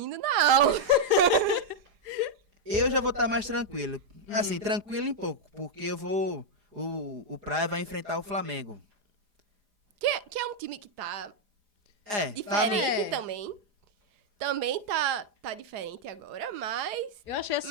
na aula. Eu já vou estar mais tranquilo. Assim, tranquilo em pouco, porque eu vou... O Praia vai enfrentar o Flamengo. Que é um time que tá Tá, diferente também. Também tá diferente agora, mas... Eu achei Mais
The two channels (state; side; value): late; left; 4.9 ms